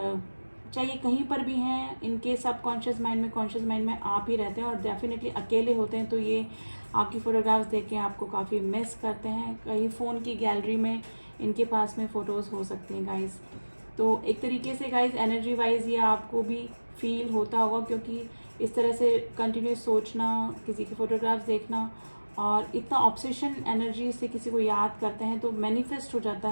चाहिए कहीं पर भी हैं, इनके सबकॉन्शियस माइंड में, कॉन्शियस माइंड में आप ही रहते हैं, और डेफिनेटली अकेले होते हैं तो ये आपकी फ़ोटोग्राफ्स देख के आपको काफ़ी मिस करते हैं। कहीं फ़ोन की गैलरी में इनके पास में फ़ोटोज़ हो सकती हैं गाइज़। तो एक तरीके से गाइज़ एनर्जी वाइज ये आपको भी फील होता होगा, क्योंकि इस तरह से कंटिन्यूस सोचना, किसी की फ़ोटोग्राफ्स देखना, और इतना ऑब्सेशन एनर्जी से किसी को याद करते हैं तो मैनिफेस्ट हो जाता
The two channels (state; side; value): inverted; both; correlation -1.00